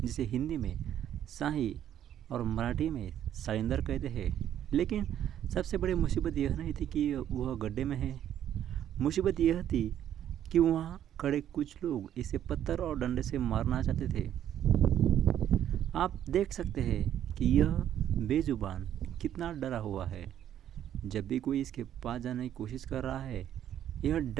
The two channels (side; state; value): left; quieter; 10.7 dB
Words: हिंदी में शाही और मराठी में साइंदर कहते हैं। लेकिन सबसे बड़ी मुसीबत यह नहीं थी कि वह गड्ढे में है। मुसीबत यह थी कि वहाँ खड़े कुछ लोग इसे पत्थर और डंडे से मारना चाहते थे। आप देख सकते हैं कि यह बेजुबान कितना डरा हुआ है। जब भी कोई इसके पास जाने की कोशिश कर रहा है, यह